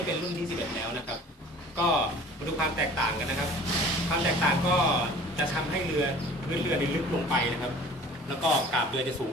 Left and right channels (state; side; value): normal; both; correlation 0.46